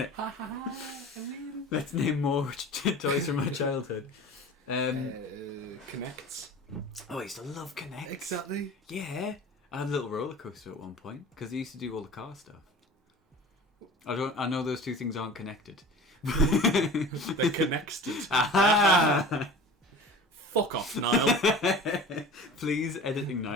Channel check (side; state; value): both; normal; correlation 0.39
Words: Let's name more toys from my childhood. Connects. Oh, I used to love Connect. Exactly. Yeah. I had a little roller coaster at one point because I used to do all the car stuff. I know those two things aren't connected. They're connected. Aha! Fuck off, Niall. Please, editing